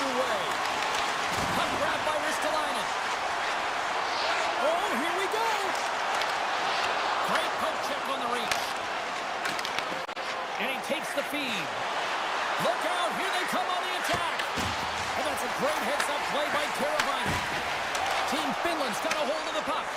Puck grabbed by Ristolainen. Oh, here we go. Great poke check on the reach. And he takes the feed. Look out, here they come on the attack. And that's a great heads-up play by Teravainen. Team Finland's got a hold of the puck.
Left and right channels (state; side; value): identical; both; correlation 1.00